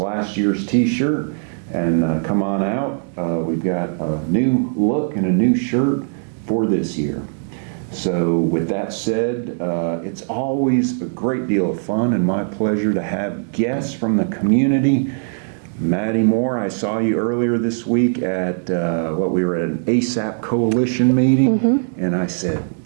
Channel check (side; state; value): left; silent; digital silence